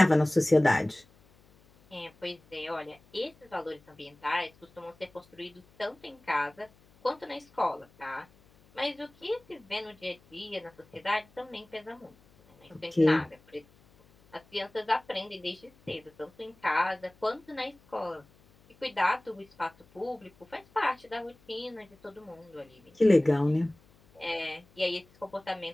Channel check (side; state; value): left; noise; hum, 29 dB below the sound